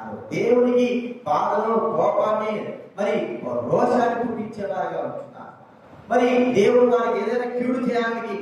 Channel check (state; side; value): identical; both; correlation 1.00